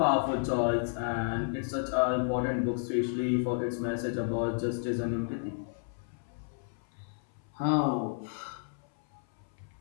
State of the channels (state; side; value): silent; right; 57 dB below the other